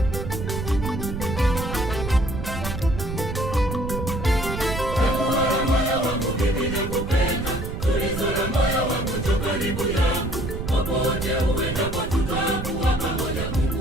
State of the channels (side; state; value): right; noise; rumble, 5 dB below the sound